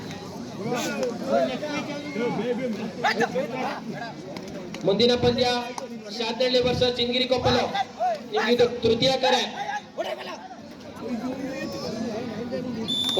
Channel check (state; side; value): identical; both; correlation 1.00